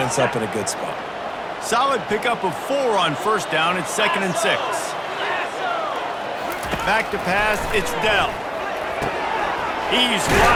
up in a good spot. Solid pickup of 4 on first down. It's 2nd and 6. Back to pass. It's Dell. He's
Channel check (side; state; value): both; identical; correlation 1.00